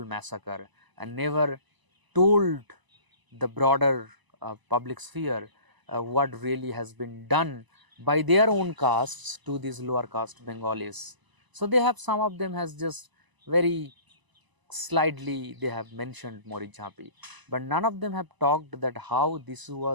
massacre and never told the broader public sphere what really has been done by their own castes to these lower caste Bengalis. So they have, some of them has just very slightly they have mentioned Marichjhapi, but none of them have talked that how this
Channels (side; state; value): left; late; 1.0 ms